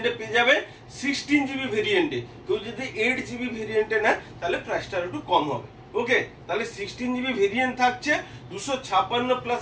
এ পেয়ে যাবেন 16GB ভেরিয়েন্টে। কেউ যদি 8GB ভেরিয়েন্টে নেয় তাহলে প্রাইসটা একটু কম হবে। ওকে, তাহলে 16GB ভেরিয়েন্ট থাকছে, 256 প্লাস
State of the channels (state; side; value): identical; both; correlation 1.00